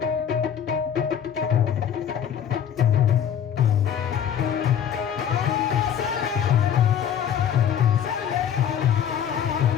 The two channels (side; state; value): right; quieter; 8.8 dB